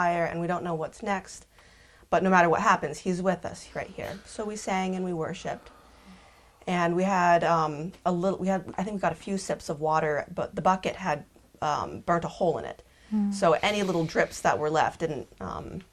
and we don't know what's next, but no matter what happens, He's with us right here. So we sang and we worshiped, and we had I think we got a few sips of water, but the bucket had burnt a hole in it. So any little drips that were left didn't,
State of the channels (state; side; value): identical; both; correlation 1.00